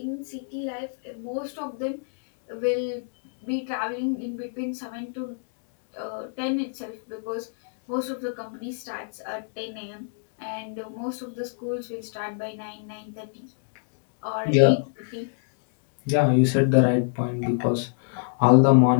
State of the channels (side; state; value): right; silent; digital silence